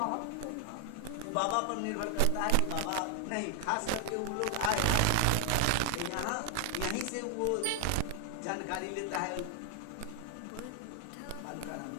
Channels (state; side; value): different; both; correlation 0.00